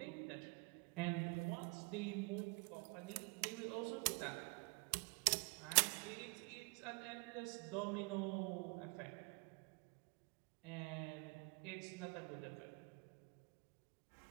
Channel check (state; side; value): quieter; left; 30.0 dB